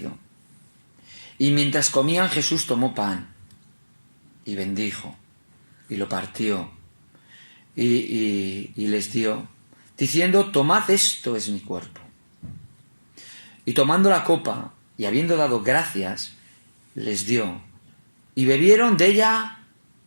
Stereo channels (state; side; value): inverted; both; correlation -1.00